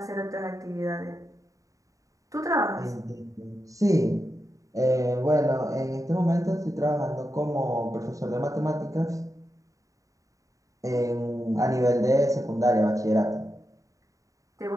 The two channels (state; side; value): late; left; 0.16 ms